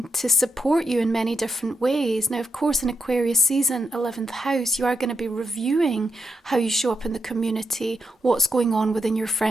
to support you in many different ways. Now, of course, in Aquarius season, 11th house, you are going to be reviewing how you show up in the community, what's going on within your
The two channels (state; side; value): normal; both; correlation 0.84